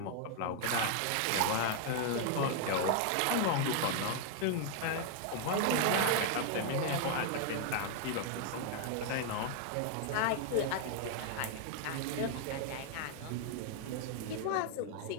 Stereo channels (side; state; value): both; different; correlation 0.00